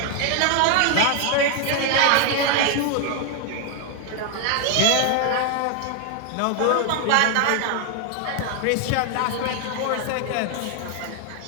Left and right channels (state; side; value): different; both; correlation 0.01